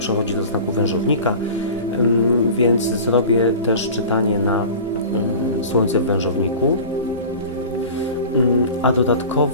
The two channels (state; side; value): inverted; both; correlation -0.37